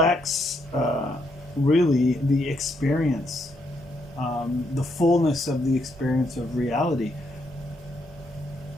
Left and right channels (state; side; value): normal; both; correlation 0.76